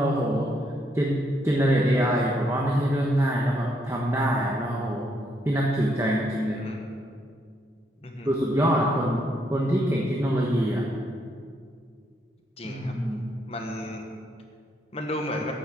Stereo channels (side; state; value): both; normal; correlation 0.74